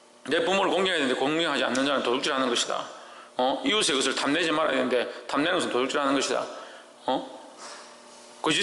내 부모를 공경해야 되는데 공경하지 않는 자는 도둑질하는 것이다. 이웃의 것을 탐내지 말아야 되는데 탐내는 것은 도둑질하는 것이다.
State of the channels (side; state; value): both; identical; correlation 1.00